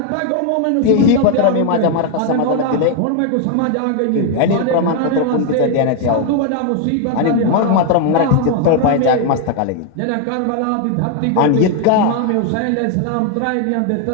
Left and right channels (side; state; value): both; different; correlation 0.01